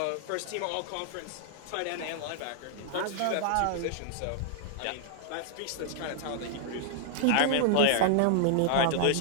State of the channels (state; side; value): different; both; correlation -0.01